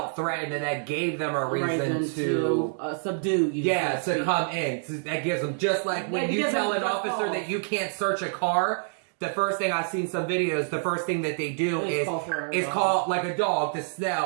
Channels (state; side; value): silent; left; digital silence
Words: threatened, and that gave them a reason to subdue you. yeah, to come in. So that gives them, just like when you tell an officer that you can't search a car, the first thing I've seen some videos, the first thing that they do is call like a dog to